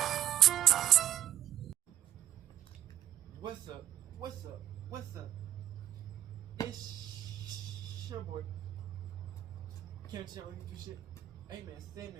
What's up? It's your boy Kevin to turn on YouTube shit. Hey man, say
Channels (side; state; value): left; quieter; 11.6 dB